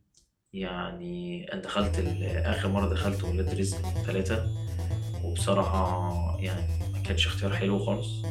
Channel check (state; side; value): identical; both; correlation 1.00